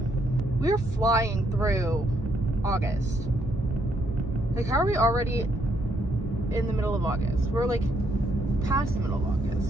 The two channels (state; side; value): normal; both; correlation 0.73